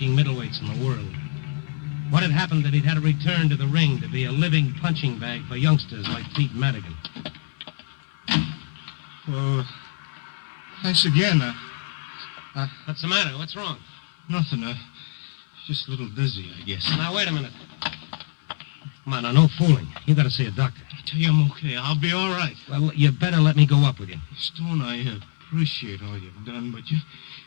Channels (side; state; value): right; silent; 59 dB below the other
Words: middleweights in the world. What had happened that he'd had to return to the ring to be a living punching bag for youngsters like Pete Madigan. Well, thanks again. What's the matter? What's wrong? Nothing. Just a little dizzy, I guess. Now, wait a minute. Come on, now, no fooling. You got to see a doctor. I tell you, I'm okay. I'll be all right. Well, you better let me go up with you. Stone, I appreciate all you've done, but you